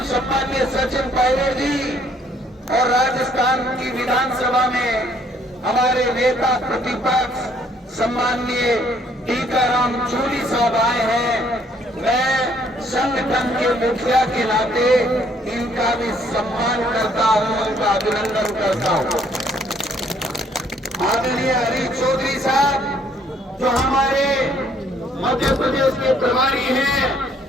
सम्माननीय सचिन पायलट जी और राजस्थान की विधानसभा में हमारे नेता प्रतिपक्ष सम्माननीय टीकाराम जूली साहब आए हैं। मैं संगठन के मुखिया के नाते इनका भी सम्मान करता हूं, उनका अभिनंदन करता हूं। आदरणीय हरीश चौधरी साहब जो हमारे मध्य प्रदेश के प्रभारी हैं,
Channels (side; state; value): both; normal; correlation 0.65